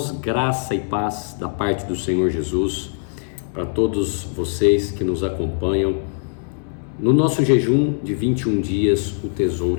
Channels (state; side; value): silent; right; 65 dB below the other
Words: graça e paz da parte do Senhor Jesus para todos vocês que nos acompanham. No nosso jejum de 21 dias, o